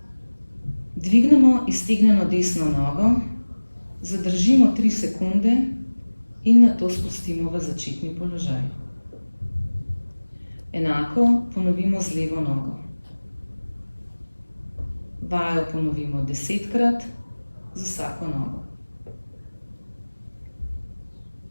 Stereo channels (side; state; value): both; inverted; correlation -1.00